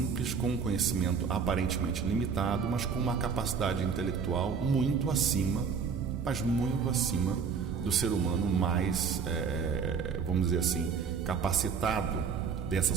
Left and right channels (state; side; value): quieter; left; 6.0 dB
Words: com um conhecimento aparentemente limitado, mas com uma capacidade intelectual muito acima, mas muito acima do ser humano mais, vamos dizer assim, capacitado dessa